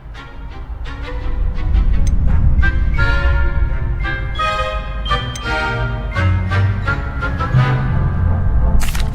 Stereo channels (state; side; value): identical; both; correlation 1.00